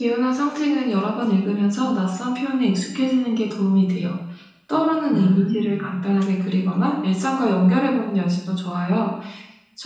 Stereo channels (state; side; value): identical; both; correlation 1.00